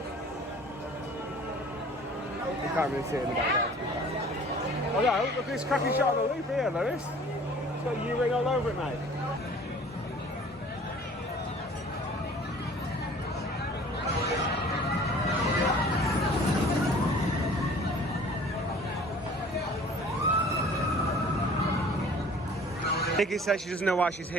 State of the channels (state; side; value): normal; both; correlation 0.49